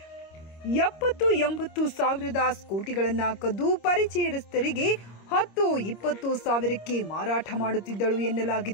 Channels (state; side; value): late; right; 26 ms